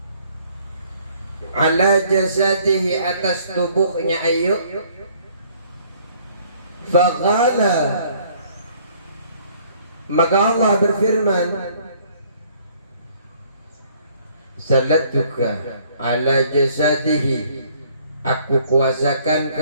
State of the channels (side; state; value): both; inverted; correlation -0.61